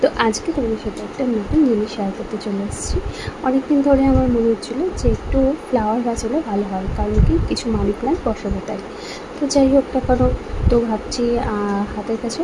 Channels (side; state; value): both; identical; correlation 1.00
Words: তো আজকে তোমাদের সাথে একটা নতুন জিনিস শেয়ার করতে চলে এসেছি। অনেকদিন ধরে আমার মনে হচ্ছিলো যে একটু ফ্লাওয়ার গাছ হলে ভালো হয়, কারণ কি কিছু মানি প্ল্যান্ট বসাবো তাই। তো যাই হোক না কেন, তো ভাবছি হাতের কাছে